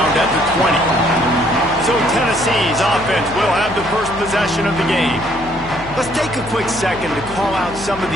at the 20. So Tennessee's offense will have the first possession of the game. Let's take a quick second to call out some of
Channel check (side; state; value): left; noise; hum, 15 dB below the sound